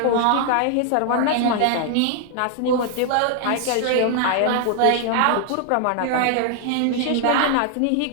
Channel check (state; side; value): different; both; correlation 0.00